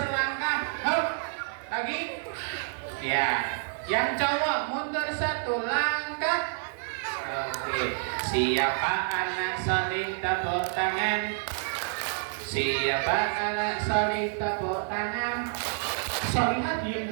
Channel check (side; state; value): left; silent; digital silence